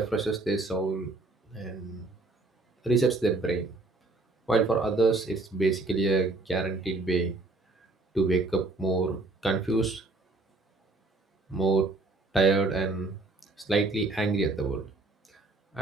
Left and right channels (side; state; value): left; quieter; 3.2 dB